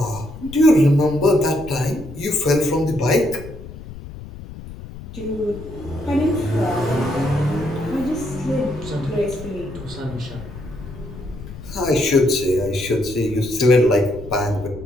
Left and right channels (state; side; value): noise; left; rumble, 13 dB below the sound